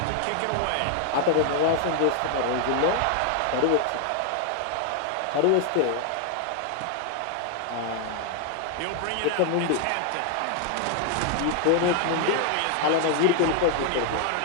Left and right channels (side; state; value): both; different; correlation 0.00